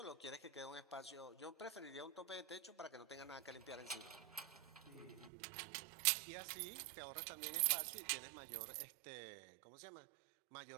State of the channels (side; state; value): left; drops out; at 5.3 s